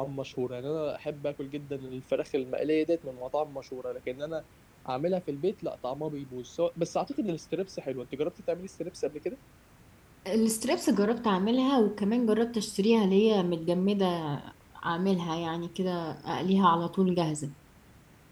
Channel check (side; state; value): both; identical; correlation 1.00